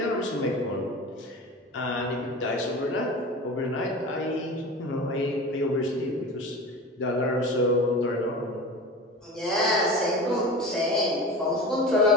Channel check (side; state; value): both; normal; correlation 0.33